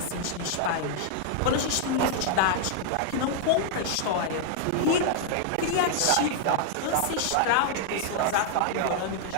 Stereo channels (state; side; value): different; both; correlation -0.01